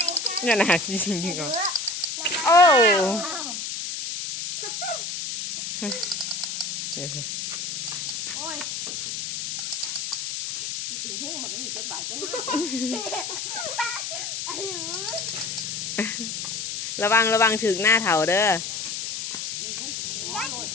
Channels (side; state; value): left; noise; hiss, 4 dB below the sound